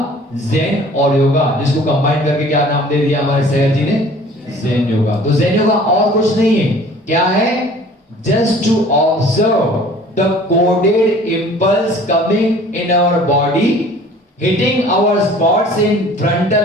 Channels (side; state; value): both; normal; correlation 0.49